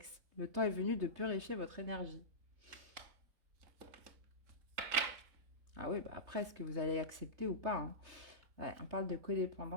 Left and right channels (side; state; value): left; late; 3.2 ms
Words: Le temps est venu de purifier votre énergie. Ah oui, bah après, est-ce que vous allez accepter ou pas, hein? Ouais, on parle de